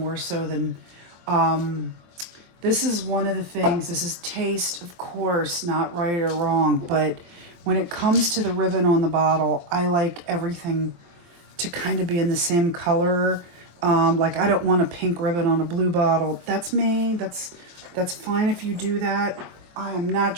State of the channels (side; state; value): left; late; 23 ms